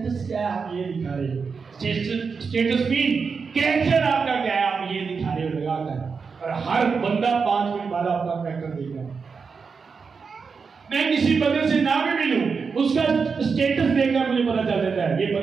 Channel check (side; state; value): left; quieter; 5.3 dB